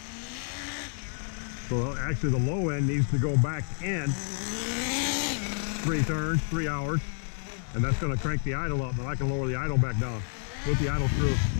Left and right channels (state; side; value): silent; right; 58 dB below the other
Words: So actually the low end needs to go back in 3 turns, 3 hours, and that's going to crank the idle up. Then I can lower the idle back down with the idle screw.